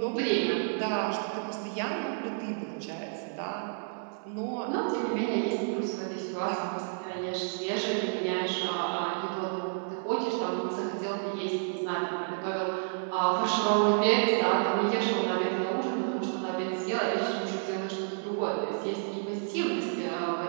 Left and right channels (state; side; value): silent; left; digital silence